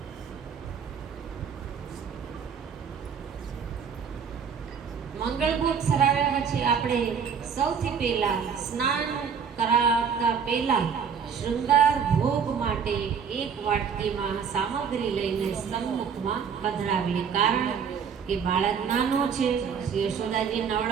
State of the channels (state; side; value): quieter; left; 6.8 dB